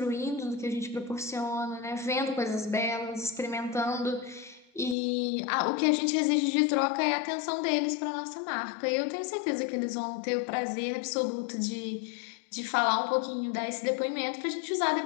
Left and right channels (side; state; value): right; drops out; at 5.0 s